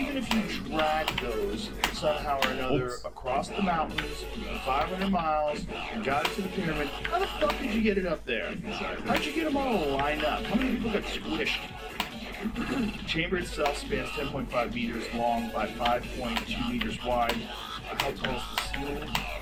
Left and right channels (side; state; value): both; identical; correlation 1.00